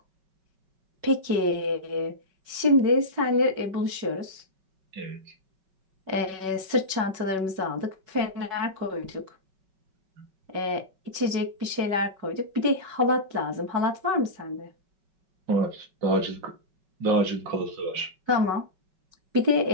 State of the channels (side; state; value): left; late; 5.3 ms